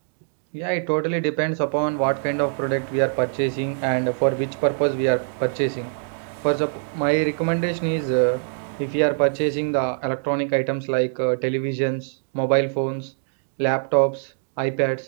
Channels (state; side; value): silent; left; digital silence